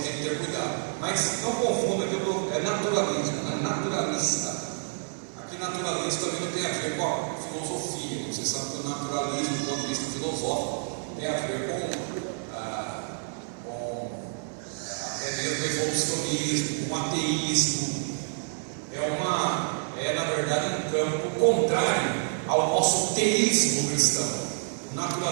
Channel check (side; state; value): left; silent; digital silence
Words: que ter cuidado. Mas não confunda que é naturalismo, não é naturalista. Aqui naturalismo também não tem a ver com a filosofia. Você sabe que o naturalismo, do ponto de vista filosófico, tem a ver com até mesmo evolucionismo, com ateísmo. É na verdade um campo contrário ao nosso teísmo cristão. O